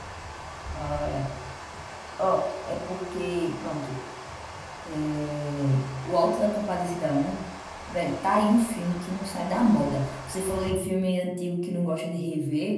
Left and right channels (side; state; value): both; identical; correlation 1.00